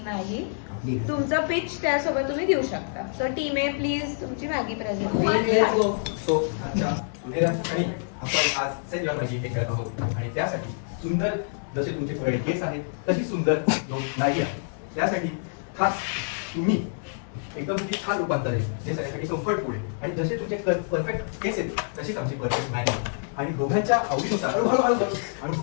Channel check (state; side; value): silent; right; digital silence